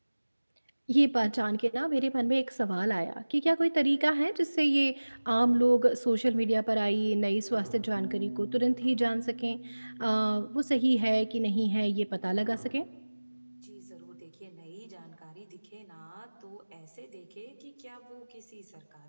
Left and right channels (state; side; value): inverted; both; correlation -1.00